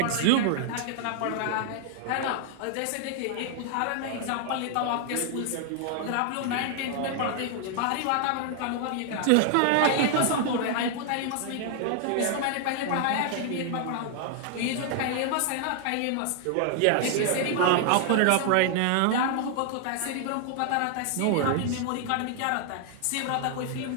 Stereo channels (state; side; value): different; both; correlation 0.00